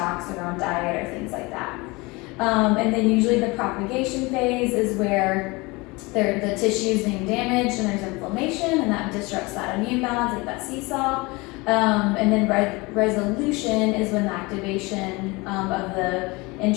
or on diet or things like that. And then usually the propagation phase is where the tissue is being damaged and there's inflammation, and that disrupts that immune balance, like that seesaw. And then resolution is when the activation of the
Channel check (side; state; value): right; quieter; 24.6 dB